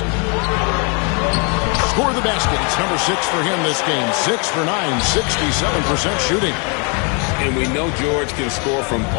Score the basket. It's number 6 for him this game. 6 for 9, 67% shooting. And we know George can score from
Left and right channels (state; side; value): quieter; right; 35.9 dB